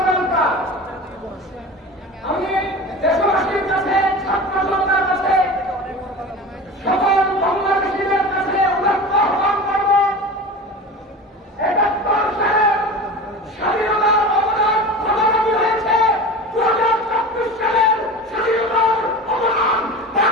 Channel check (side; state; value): both; normal; correlation 0.32